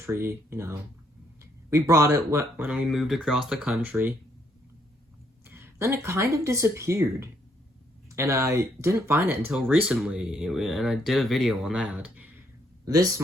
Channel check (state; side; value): normal; both; correlation 0.71